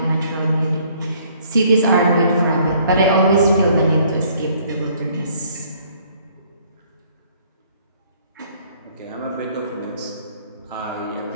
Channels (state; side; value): inverted; both; correlation -0.61